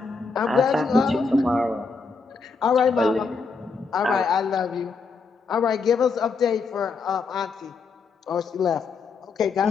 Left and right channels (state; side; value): quieter; right; 4.7 dB